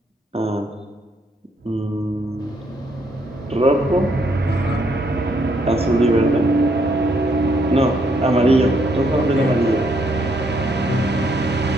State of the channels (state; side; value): normal; both; correlation 0.72